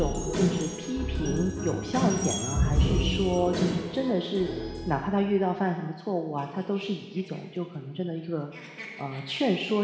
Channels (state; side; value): identical; both; correlation 1.00